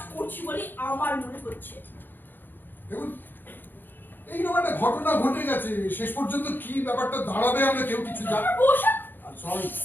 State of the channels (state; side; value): late; right; 0.093 ms